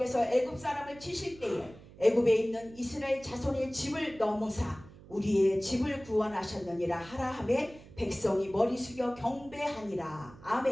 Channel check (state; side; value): noise; right; hum, 20 dB below the sound